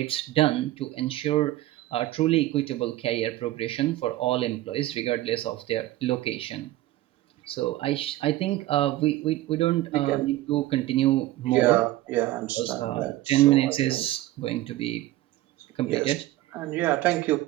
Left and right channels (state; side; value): quieter; left; 16.1 dB